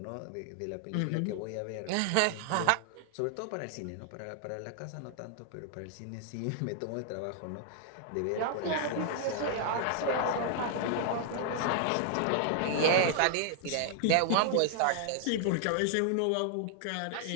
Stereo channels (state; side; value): different; both; correlation -0.01